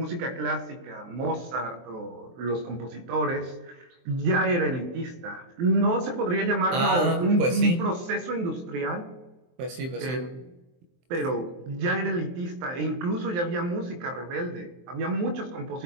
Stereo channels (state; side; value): late; left; 23 ms